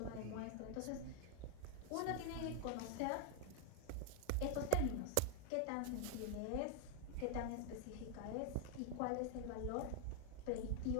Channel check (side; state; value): both; different; correlation 0.00